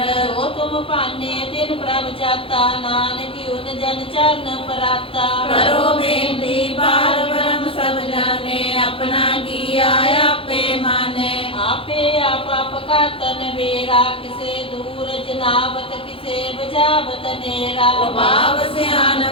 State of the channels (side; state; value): right; late; 0.27 ms